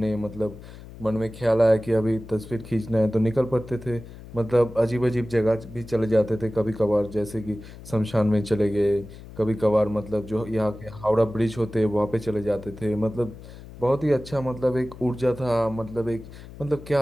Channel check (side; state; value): left; noise; hum, 16 dB below the sound